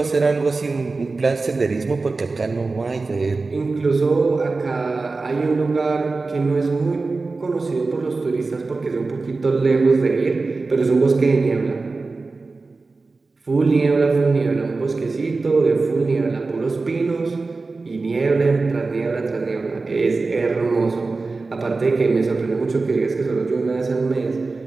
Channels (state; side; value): quieter; left; 3.8 dB